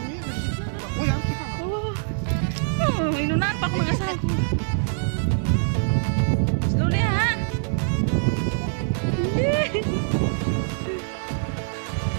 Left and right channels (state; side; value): silent; left; digital silence